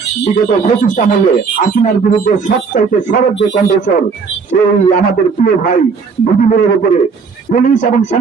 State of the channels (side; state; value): left; quieter; 5.2 dB